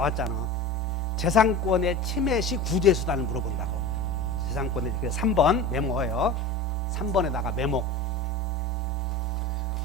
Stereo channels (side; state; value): both; normal; correlation 0.32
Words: 재산권의 침해 시 구제 수단을 물어본다고. 재산권의, 3번 메모해요. 3번에다가 메모.